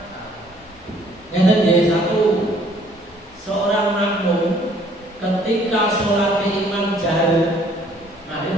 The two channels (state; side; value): normal; both; correlation 0.60